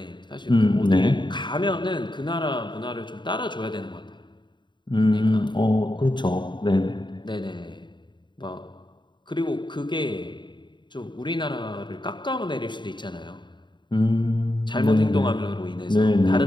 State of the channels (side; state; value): right; late; 0.22 ms